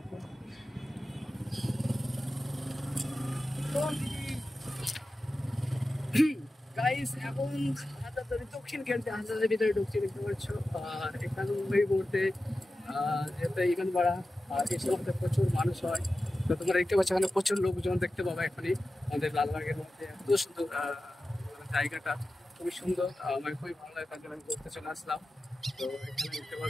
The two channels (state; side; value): normal; both; correlation 0.94